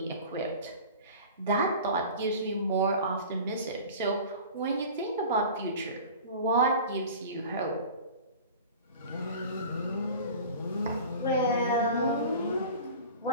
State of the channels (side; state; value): both; inverted; correlation -0.38